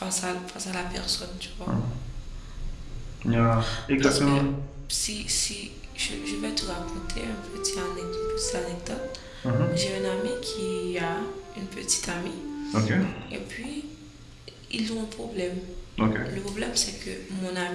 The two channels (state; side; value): identical; both; correlation 1.00